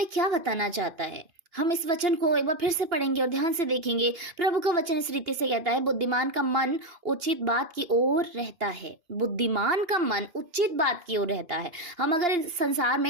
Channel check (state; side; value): late; left; 2.5 ms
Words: क्या बताना चाहता है, हम इस वचन को एक बार फिर से पढ़ेंगे और ध्यान से देखेंगे। प्रभु का वचन इस रीति से कहता है, बुद्धिमान का मन उचित बात की ओर रहता है। बुद्धिमान का मन उचित बात की ओर रहता है। हम अगर इस संसार